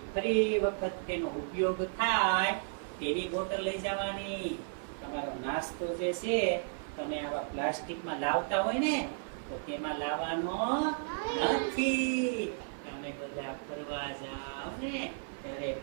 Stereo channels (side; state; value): left; silent; 55 dB below the other